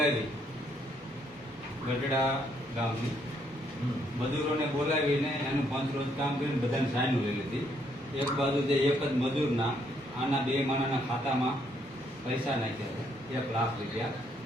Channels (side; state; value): both; normal; correlation 0.71